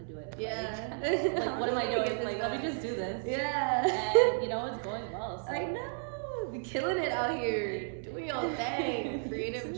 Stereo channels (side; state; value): left; silent; digital silence